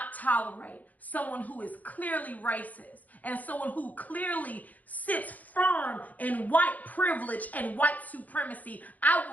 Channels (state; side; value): late; right; 0.079 ms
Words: tolerate someone who is clearly racist and someone who clearly sits firm in white privilege and white supremacy. I